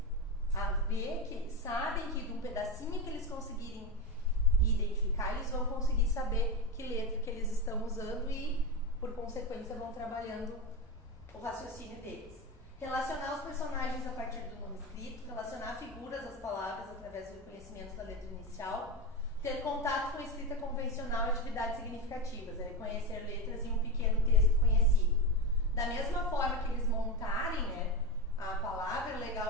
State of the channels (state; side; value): normal; both; correlation 0.17